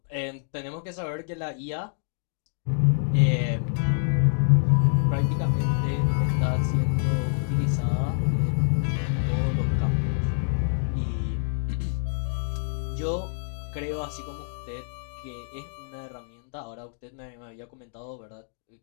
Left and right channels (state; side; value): silent; right; digital silence